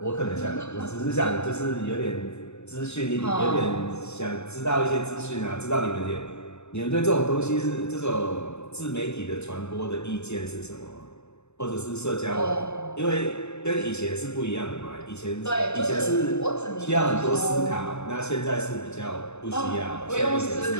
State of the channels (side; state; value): right; late; 0.81 ms